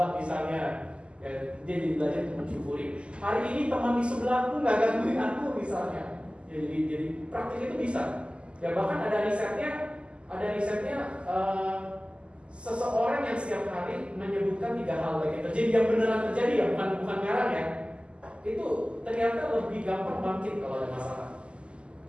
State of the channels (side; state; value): left; late; 0.053 ms